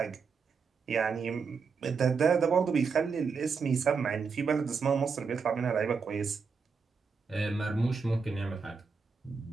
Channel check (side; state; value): left; quieter; 5.3 dB